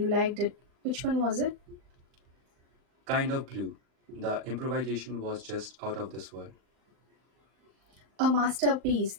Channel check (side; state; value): left; late; 39 ms